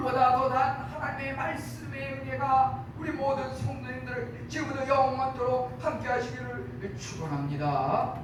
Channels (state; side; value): identical; both; correlation 1.00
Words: 더 단 하나님의 말씀의 은혜가 우리 모든 성도님들 지금부터 영원토록 함께 하시기를 축원합니다.